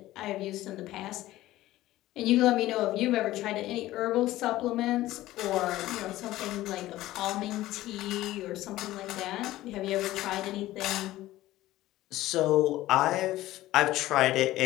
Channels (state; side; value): quieter; right; 15.9 dB